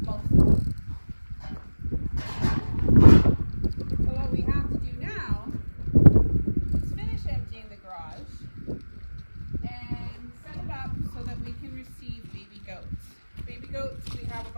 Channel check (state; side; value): inverted; both; correlation -1.00